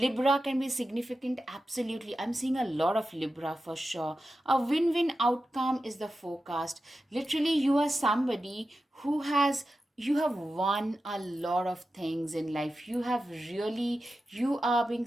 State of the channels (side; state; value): both; normal; correlation 0.92